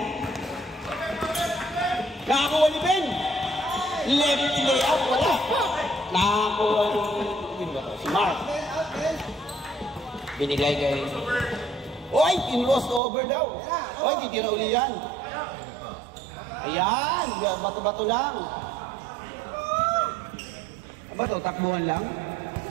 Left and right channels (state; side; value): drops out; left; at 13.0 s